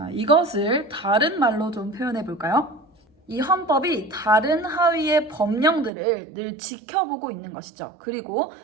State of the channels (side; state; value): left; drops out; at 5.9 s